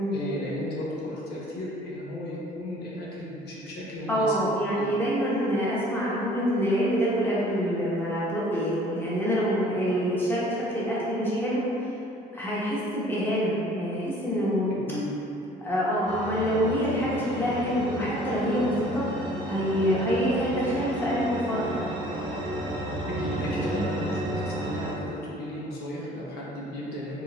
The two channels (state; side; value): normal; both; correlation 0.53